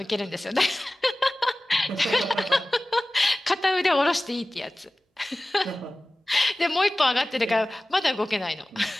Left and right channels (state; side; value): normal; both; correlation 0.97